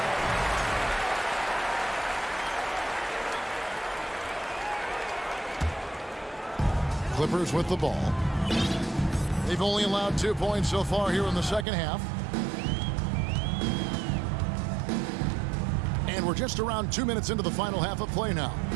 Clippers with the ball. They've only allowed 2 points so far here in the second half. And we're just around 2 minutes into the final half of play now.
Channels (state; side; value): drops out; left; at 11.7 s